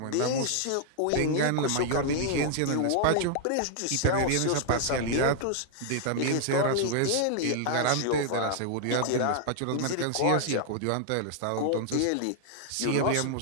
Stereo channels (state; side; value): different; both; correlation -0.01